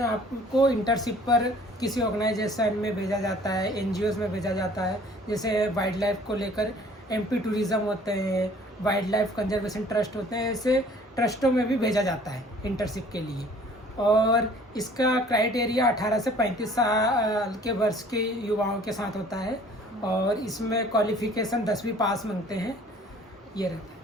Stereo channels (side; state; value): both; normal; correlation 0.53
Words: आपको इंटर्नशिप पर किसी ऑर्गेनाइजेशन में भेजा जाता है, एनजीओज में भेजा जाता है. जैसे वाइल्ड लाइफ को लेकर एमपी टूरिज्म होते हैं, वाइल्ड लाइफ कंजर्वेशन ट्रस्ट होते हैं, ऐसे ट्रस्टों में भी भेजा जाता है इंटर्नशिप के लिए. और इसका क्राइटेरिया 18 से 35 साल के वर्ष के युवाओं के साथ होता है और इसमें क्वालिफिकेशन 10वीं पास मांगते हैं. ये रहता है.